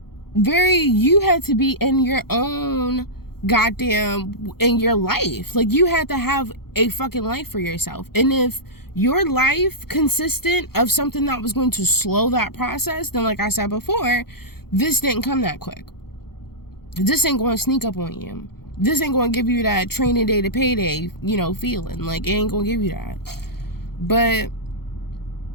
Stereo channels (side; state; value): right; late; 0.95 ms